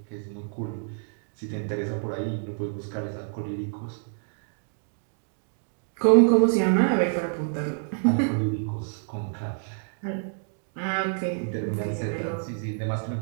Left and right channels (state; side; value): silent; left; 60 dB below the other